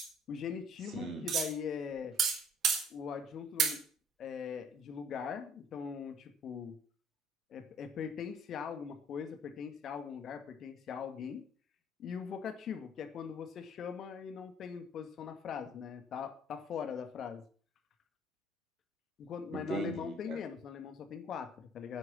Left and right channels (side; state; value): both; normal; correlation 0.57